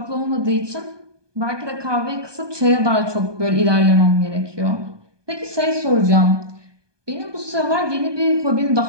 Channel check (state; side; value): late; left; 1.2 ms